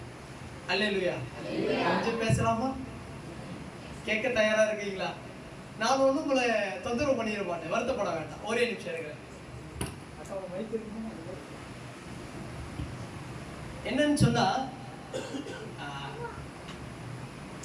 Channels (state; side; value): identical; both; correlation 1.00